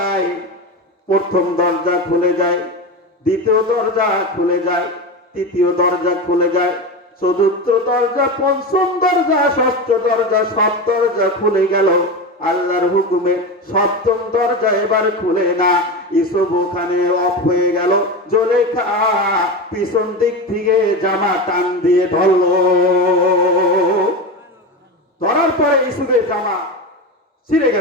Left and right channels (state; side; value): normal; both; correlation 0.21